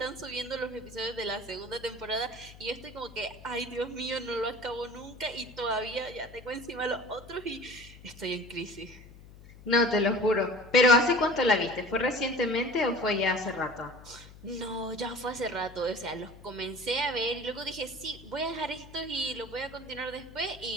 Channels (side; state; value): left; noise; hum, 19 dB below the sound